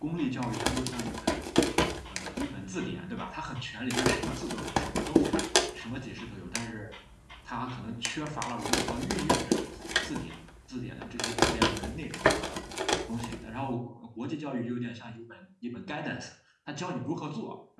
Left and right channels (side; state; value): both; identical; correlation 1.00